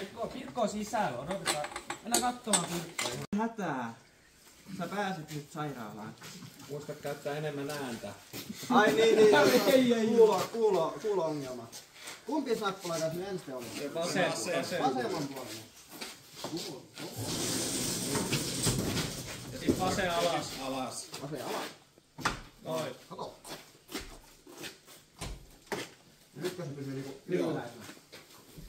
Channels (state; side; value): identical; both; correlation 1.00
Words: Pirkko on sisällä, odotetaan. Mennään katsomaan Pirkkoa. Hätää. Sä pääset nyt sairaalaan. Muista käyttää enemmän ääntä. Ai niin. Kuulo-ongelma. Kumpi nappula tässä nyt ensin oli? Vasemman puolella. Ja sit vasen alas. Vasen alas. Noin. Kato. Nytkö se pysyy niinku ylhäällä?